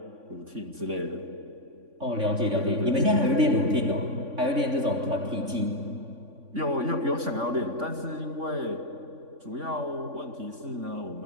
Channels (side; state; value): left; late; 3.5 ms